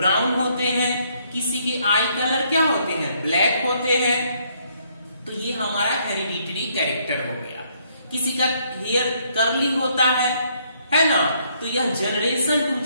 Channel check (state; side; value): inverted; both; correlation -0.69